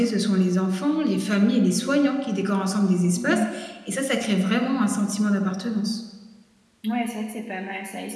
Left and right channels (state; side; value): identical; both; correlation 1.00